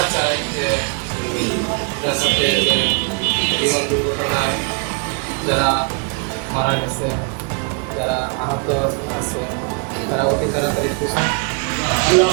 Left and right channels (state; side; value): quieter; left; 36.6 dB